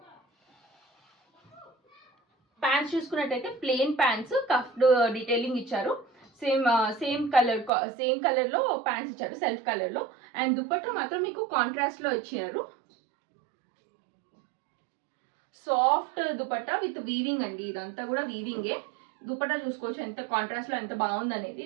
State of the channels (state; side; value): drops out; left; at 7.7 s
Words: ప్యాంట్స్ చూసుకున్నట్టయితే ప్లెయిన్ ప్యాంట్స్, కఫ్డ్ డీటెయిలింగ్ ఇచ్చారు. సేమ్ కలర్లో ప్యాంట్స్ ఇచ్చారు, సెల్ఫ్ కలర్లో. అండ్ దుపట్టా మాత్రం మీకు కాంట్రాస్ట్లో ఇచ్చారు. సాఫ్ట్ దుపట్టా విత్ వీవింగ్ అండి. ఇదంతా కూడా వీవింగే. దుపట్టా చూసుకోవచ్చు ఎంత కాంట్రాస్ట్లో ఎంత బాగుంది అనేది.